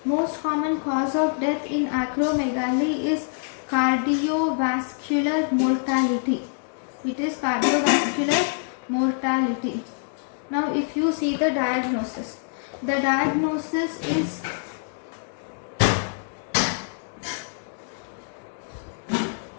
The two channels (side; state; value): right; silent; digital silence